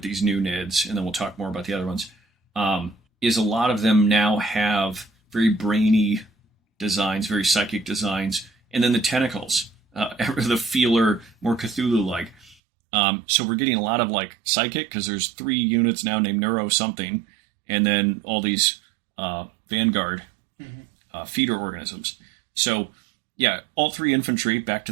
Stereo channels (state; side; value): drops out; left; at 12.6 s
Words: these new NIDs, and then we'll talk more about the other ones, is a lot of them now have very brainy designs, very psychic designs, and then the tentacles, the feeler, more Cthulhu-like. So we're getting a lot of like psychic, because there's 3 units now named Neuro something, and then all these Vanguard feeder organisms. So yeah, all 3 infantry, back to